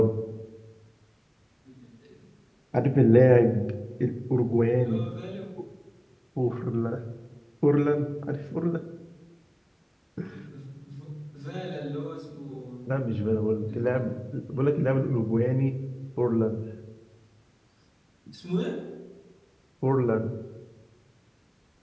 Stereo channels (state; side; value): identical; both; correlation 1.00